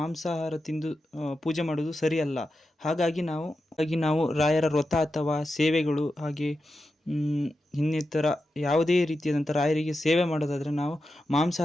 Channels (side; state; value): both; normal; correlation 0.90